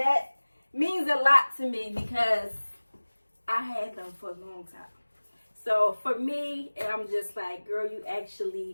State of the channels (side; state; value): both; inverted; correlation -1.00